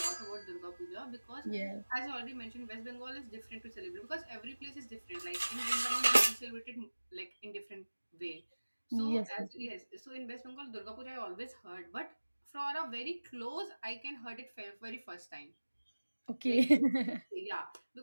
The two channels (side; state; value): both; inverted; correlation -1.00